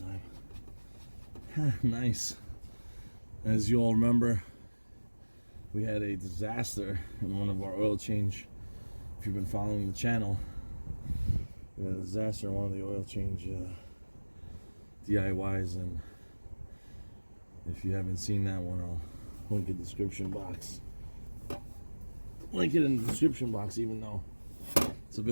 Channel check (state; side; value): inverted; both; correlation -1.00